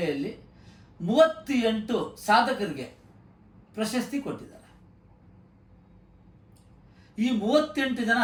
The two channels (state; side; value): identical; both; correlation 1.00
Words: 38 ಸಾಧಕರಿಗೆ ಪ್ರಶಸ್ತಿ ಕೊಟ್ಟಿದ್ದಾರೆ. ಈ 38 ಜನ